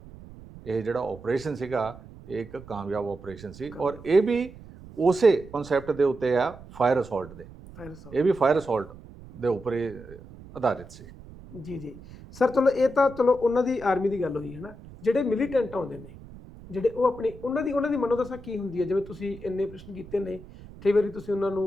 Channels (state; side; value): noise; right; rumble, 18 dB below the sound